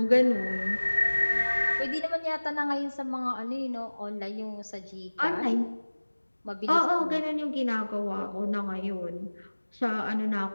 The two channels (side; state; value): both; inverted; correlation -1.00